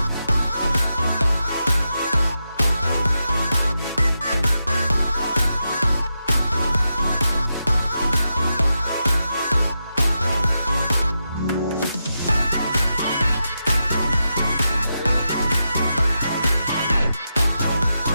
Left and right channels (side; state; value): both; inverted; correlation -0.87